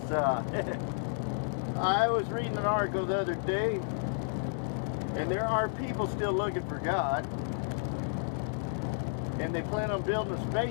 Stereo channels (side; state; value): right; silent; 57 dB below the other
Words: I was reading an article the other day, and there are people still looking for God, and they plan on building a